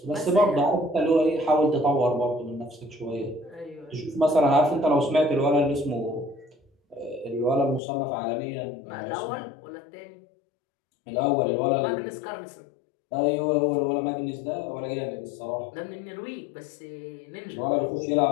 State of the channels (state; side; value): drops out; right; at 7.8 s